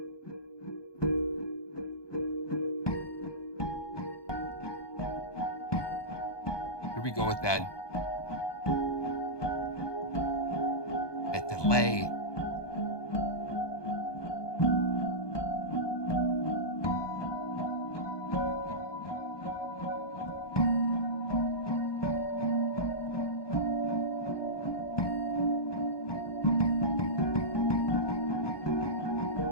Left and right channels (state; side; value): late; right; 1.2 ms